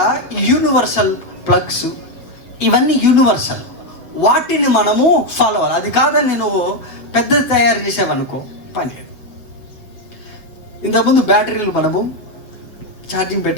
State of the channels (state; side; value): late; right; 7.5 ms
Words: యూనివర్సల్ ప్లగ్స్, ఇవన్నీ యూనివర్సల్. వాటిని మనము ఫాలో అవ్వాలి. అది కాదని నేను పెద్దది తయారు చేసావనుకో పని లేదు. ఇంతకుముందు బ్యాటరీలు మనము ఛార్జింగ్